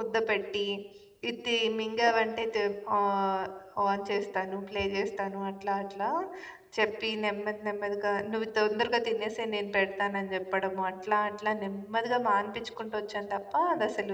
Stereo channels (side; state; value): both; identical; correlation 1.00